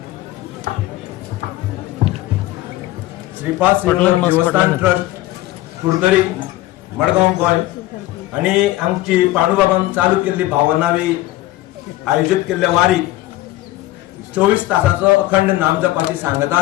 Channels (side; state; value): right; quieter; 16.5 dB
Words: श्रीपाद श्रीवल्लभ देवस्थान ट्रस्ट कुडतरी मडगांव गोय आणि आमची पांडुबाबान चालू केल्ली भावनावी आयोजित केल्ल्या वारी 24 तासाचो अखंड नाम जपाची